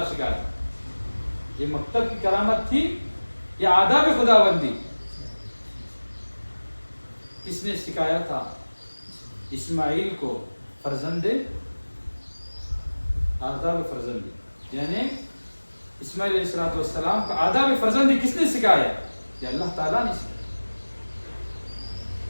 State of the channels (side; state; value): both; inverted; correlation -1.00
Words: سکھایا تھا۔ یہ مکتب کی کرامت تھی یا آداب خداوندی؟ کس نے سکھایا تھا؟ اسماعیل کو فرزند آداب فرزندی، یعنی اسماعیل علیہ السلام کا آداب فرزندی کس نے سکھایا؟ یہ اللہ تعالیٰ نے سکھایا،